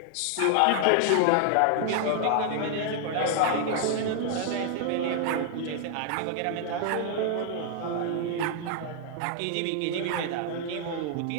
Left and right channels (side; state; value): both; different; correlation 0.00